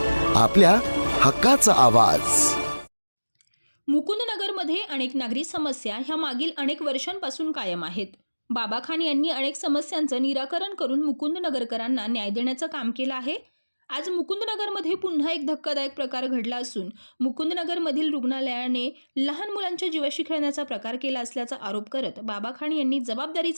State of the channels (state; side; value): inverted; both; correlation -1.00